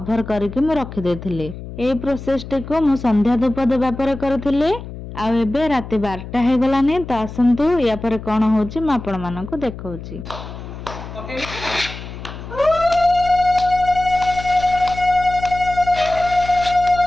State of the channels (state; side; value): noise; left; hum, 11 dB below the sound